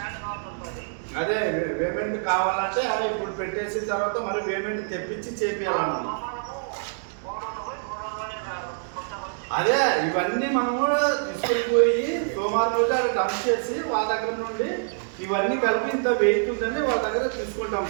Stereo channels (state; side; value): silent; left; digital silence